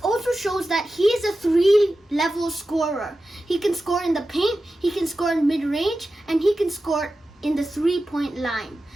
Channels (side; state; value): both; normal; correlation 0.93